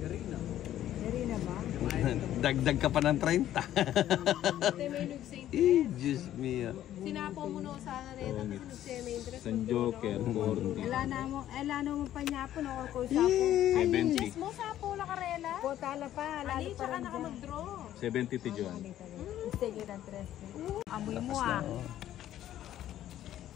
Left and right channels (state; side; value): quieter; right; 12.3 dB